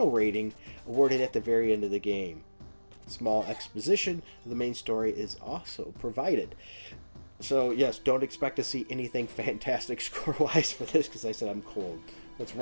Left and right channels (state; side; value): inverted; both; correlation -1.00